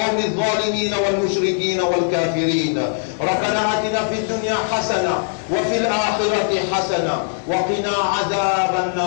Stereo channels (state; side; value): silent; right; digital silence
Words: الظالمين والمشركين والكافرين. ربنا آتنا في الدنيا حسنة وفي الآخرة حسنة وقنا عذاب